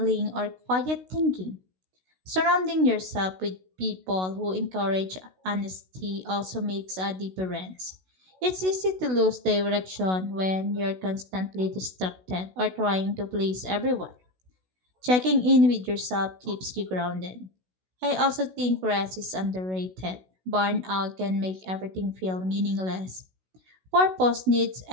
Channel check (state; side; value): late; left; 16 ms